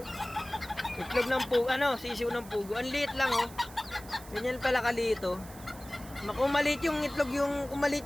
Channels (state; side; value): noise; right; hiss, 18 dB below the sound